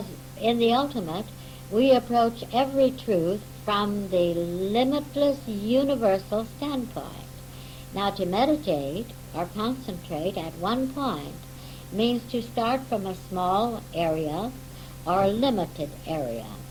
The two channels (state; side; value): identical; both; correlation 1.00